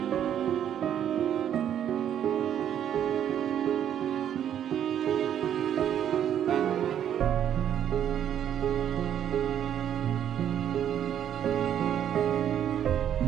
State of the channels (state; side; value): quieter; left; 9.9 dB